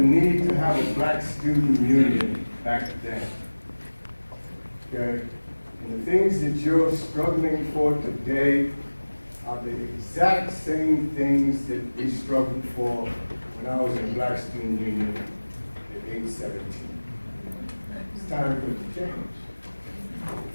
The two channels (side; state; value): both; inverted; correlation -1.00